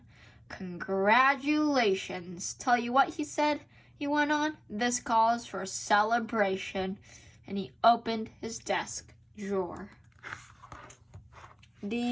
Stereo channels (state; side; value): identical; both; correlation 1.00